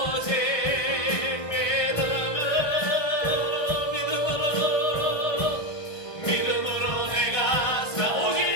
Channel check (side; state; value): right; late; 1.4 ms